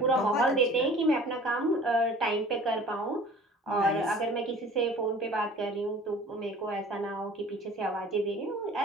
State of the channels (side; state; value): both; normal; correlation 0.46